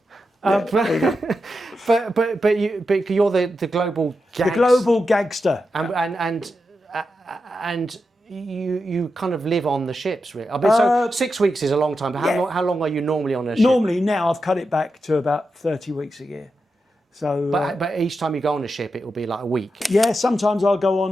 But you're the global gangster. The global gangster. And you kind of live on the ships, really. I mean, so 6 weeks is a long time, but how long are you normally on a ship? Normally now I've cut it back to about 30 weeks a year. So, but each time you go on a ship, it will be like a week. Yeah, sometimes I'll go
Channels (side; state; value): both; normal; correlation 0.88